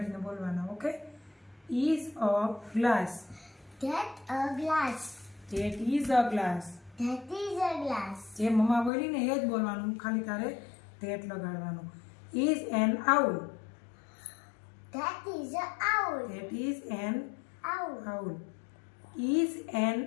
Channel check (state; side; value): drops out; right; at 8.9 s